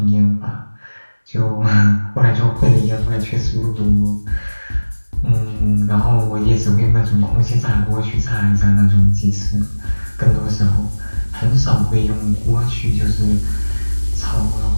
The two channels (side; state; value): both; inverted; correlation -1.00